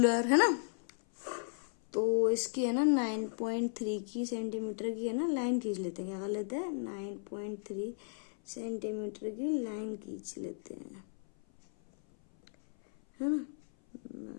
है ना। तो इसकी है ना 9.3 की सेंटीमीटर की है ना लाइन खींच लेते हैं। क्या कर लेते हैं? 9.3 सेंटीमीटर की लाइन खींच लेते हैं, है ना।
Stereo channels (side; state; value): right; silent; 54 dB below the other